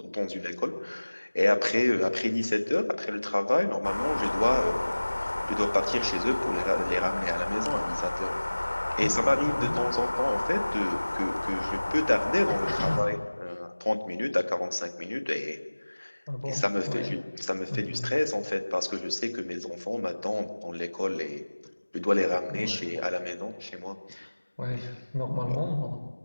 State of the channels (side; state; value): both; inverted; correlation -1.00